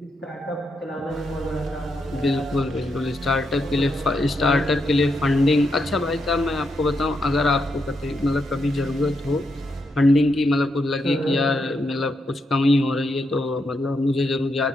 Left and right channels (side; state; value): both; normal; correlation 0.82